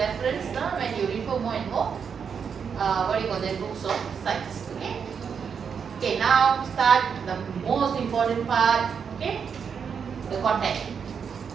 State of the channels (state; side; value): quieter; left; 6.7 dB